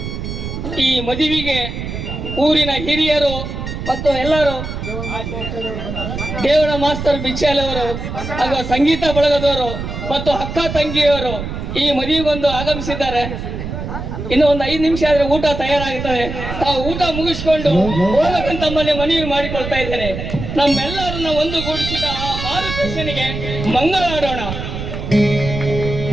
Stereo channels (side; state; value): right; noise; rumble, 6 dB below the sound